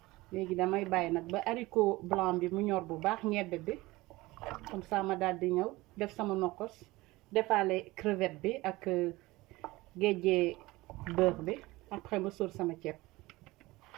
léegi damay bàyyi nag ba haricot blanc bi mu ñor bu baax ñebbe bi comme ça ma daal di ñëw def sama nokos defaale crevette bi ak géejee beurre bi après ma sóor sama ceeb.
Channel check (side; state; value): left; quieter; 20.2 dB